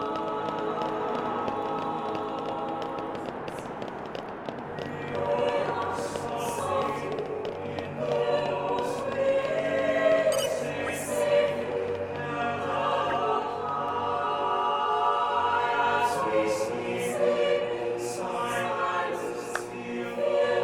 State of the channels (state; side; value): identical; both; correlation 1.00